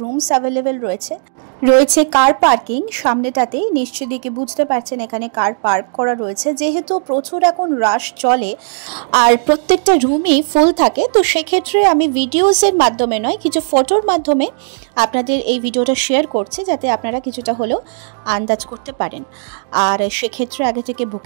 রুমস অ্যাভেলেবেল রয়েছে কার পার্কিং সামনেটাতে। নিশ্চয়ই দেখে বুঝতে পারছেন এখানে কার পার্ক করা রয়েছে। যেহেতু প্রচুর এখন রাশ চলে আর প্রত্যেকটা রুমই ফুল থাকে, তো সেক্ষেত্রে আমি ভিডিওসের মাধ্যমে নয়, কিছু ফটোর মাধ্যমে আপনাদের এই ভিডিওটা শেয়ার করছি, যাতে আপনারা কিছুটা হলেও আন্দাজ করতে পারেন। আর সেক্ষেত্রে আগে থেকে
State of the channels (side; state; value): left; silent; digital silence